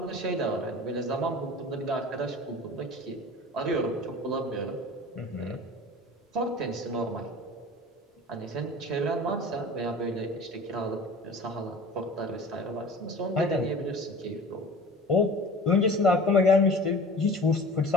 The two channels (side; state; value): both; normal; correlation 0.41